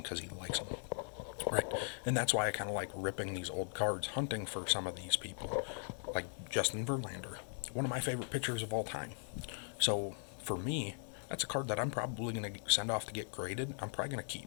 because he likes them. Right? And that's why I kind of like ripping these old cards, hunting for some of these people. Like Justin Verlander, one of my favorite pitchers of all time. So for me, that's a card that I'm probably going to send off to get graded. I'm probably going to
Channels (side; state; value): right; silent; 52 dB below the other